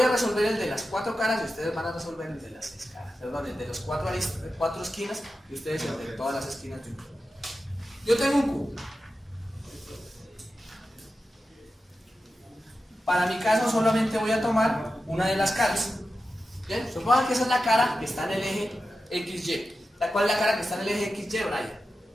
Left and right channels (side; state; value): both; normal; correlation 0.92